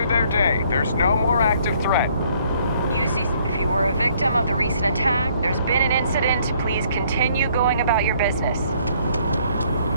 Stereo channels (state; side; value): inverted; both; correlation -0.64